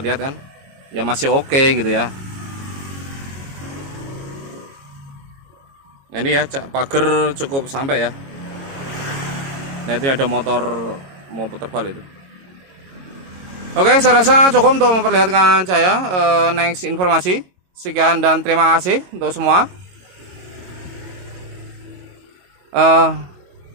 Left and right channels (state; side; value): late; left; 22 ms